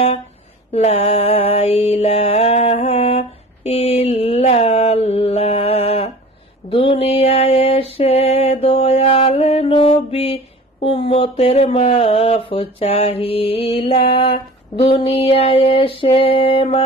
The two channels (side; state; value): both; normal; correlation 0.41